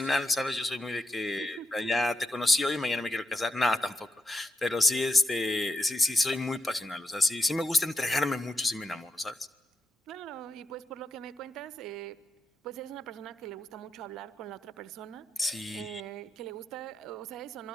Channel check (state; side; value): normal; both; correlation 0.84